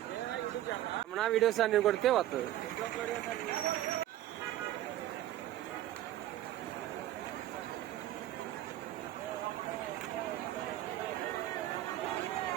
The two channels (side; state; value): left; quieter; 13.6 dB